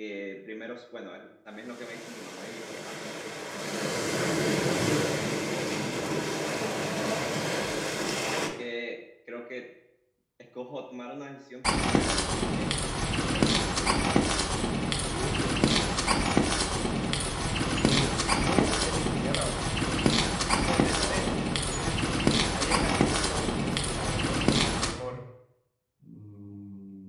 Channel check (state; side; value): identical; both; correlation 1.00